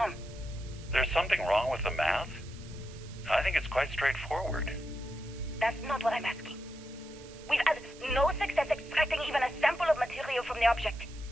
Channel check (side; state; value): right; noise; hiss, 20 dB below the sound